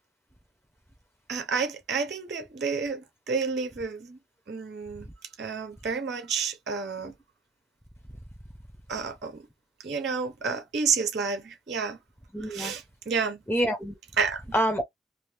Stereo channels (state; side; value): quieter; left; 3.7 dB